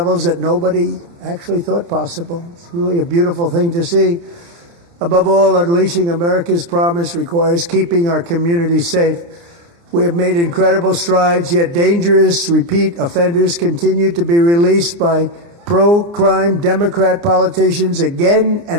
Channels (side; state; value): left; late; 29 ms